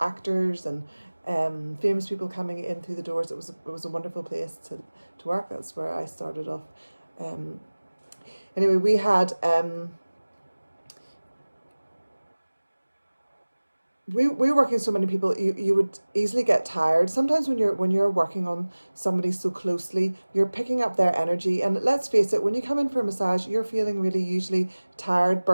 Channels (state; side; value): inverted; both; correlation -1.00